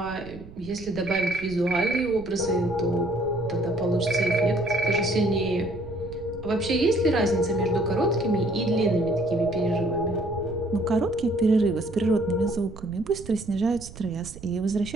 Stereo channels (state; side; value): noise; right; rumble, 16 dB below the sound